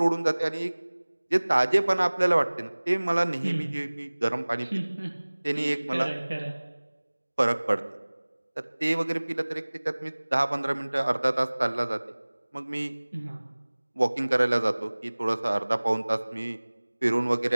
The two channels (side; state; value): both; inverted; correlation -1.00